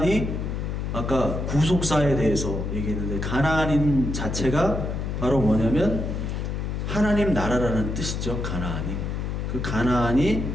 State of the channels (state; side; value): noise; left; hum, 3 dB below the sound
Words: 아까 구속사에 대해서 얘기했는데, 가나안인 자체가 바로 뭐냐면 하나님 나라라는 뜻이죠. 가나안이. 그 가나안이